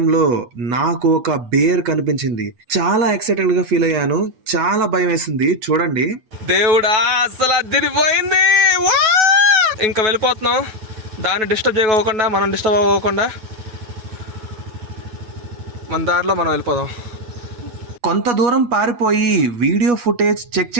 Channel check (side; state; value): left; late; 9.3 ms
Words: నాకు ఒక బేర్ కనిపించింది. చాలా ఎక్సైటెడ్ గా ఫీల్ అయ్యాను. చాలా భయం వేసింది. చూడండి దేవుడా, అసలు అదిరిపోయింది. ఇంకా వెళ్ళిపోతున్నాం. దాన్ని డిస్టర్బ్ చేయకోకుండా, మనం డిస్టర్బ్ అవ్వకుండా మన దారిలో మనం వెళ్ళిపోదాం. కొంత దూరం పారిపోయి వీడియో ఫుటేజ్ చెక్